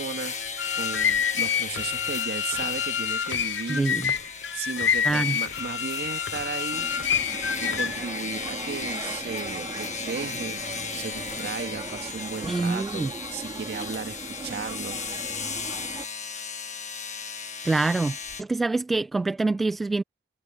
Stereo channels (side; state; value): both; normal; correlation 0.36